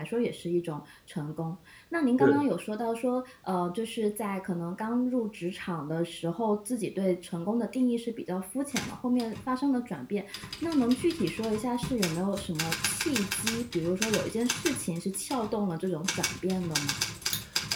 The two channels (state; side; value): identical; both; correlation 1.00